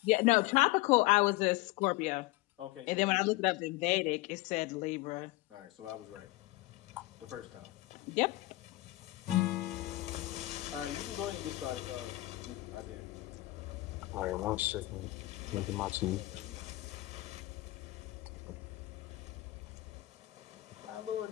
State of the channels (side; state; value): right; quieter; 19.5 dB